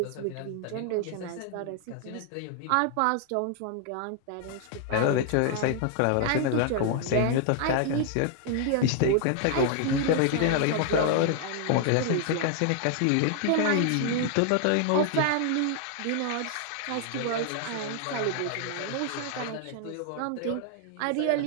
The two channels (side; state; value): both; different; correlation 0.00